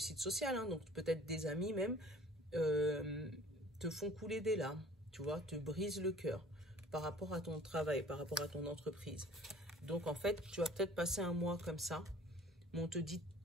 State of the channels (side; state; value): both; normal; correlation 0.49